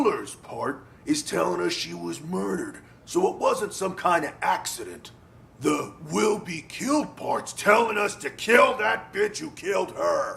part is telling us she was murdered, so it wasn't some kind of accident. The will be killed part's telling us to kill that bitch who killed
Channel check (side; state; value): both; identical; correlation 1.00